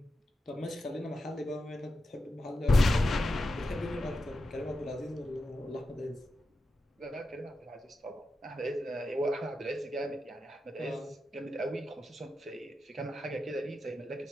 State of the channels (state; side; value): normal; both; correlation 0.90